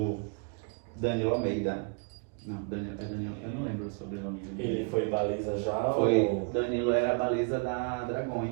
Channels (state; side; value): quieter; left; 36.0 dB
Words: Almeida. Não, Danilo, eu não lembro o sobrenome dele. Ele foi baliza já? Foi, Danilo era a baliza da